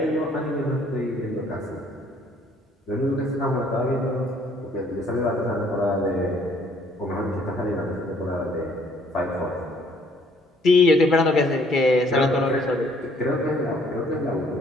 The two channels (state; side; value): normal; both; correlation 0.62